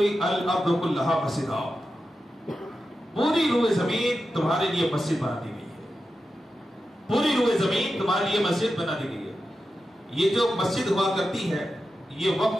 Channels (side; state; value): both; normal; correlation 0.90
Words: الارض کلھا مسجدا، پوری روئے زمین تمہارے لیے مسجد بنا دی گئی ہے. پوری روئے زمین تمہارے لیے مسجد بنا دی گئی ہے. یہ جو مسجد ہوا کرتی ہے یہ